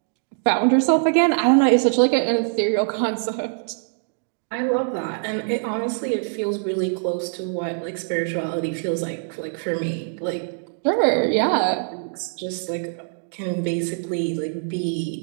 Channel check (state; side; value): silent; left; digital silence